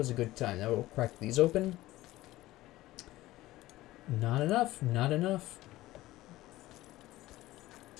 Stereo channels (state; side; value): quieter; right; 16.9 dB